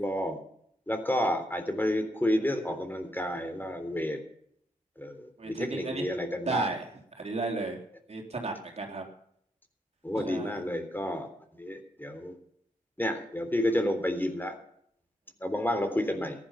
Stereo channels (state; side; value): normal; both; correlation 0.79